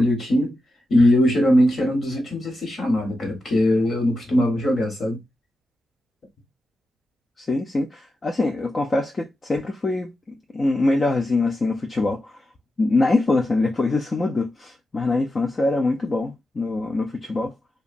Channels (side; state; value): both; normal; correlation 0.90